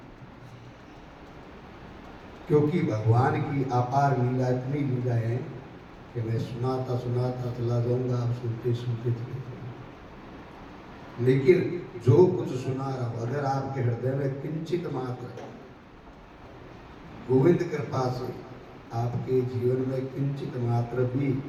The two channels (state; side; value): identical; both; correlation 1.00